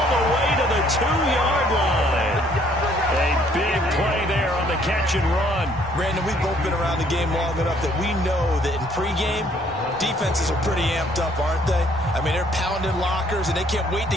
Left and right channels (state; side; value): normal; both; correlation 0.63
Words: the way to the 2-yard line. A big play there on the catch and run. Brandon, we've both been around the game long enough that we know that in pregame, defenses are pretty amped up, aren't they? I mean, they're pounding lockers, and they can't wait to